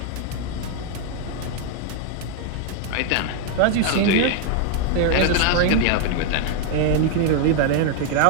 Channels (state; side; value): different; both; correlation 0.00